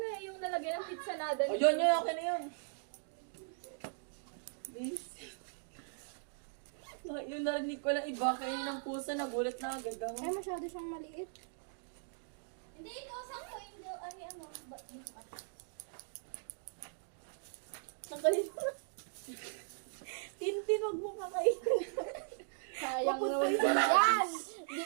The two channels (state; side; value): silent; left; digital silence